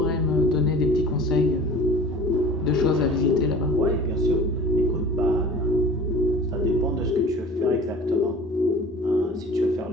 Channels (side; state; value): both; normal; correlation 0.42